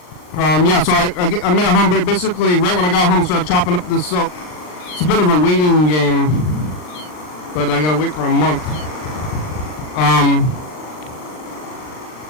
Yeah, so I made a home. Basically, right when I got home, I started chopping up this soap. It's a bit of a waiting game, but I gotta wait for a month.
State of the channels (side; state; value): right; late; 39 ms